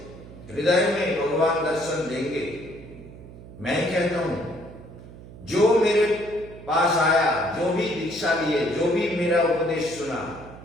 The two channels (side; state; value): right; noise; hum, 17 dB below the sound